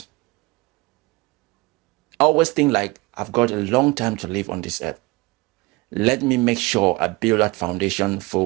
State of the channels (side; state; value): left; quieter; 23.9 dB